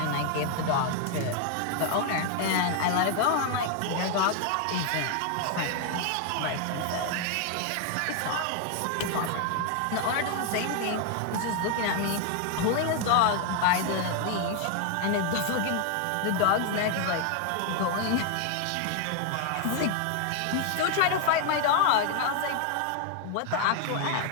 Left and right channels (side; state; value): both; different; correlation 0.00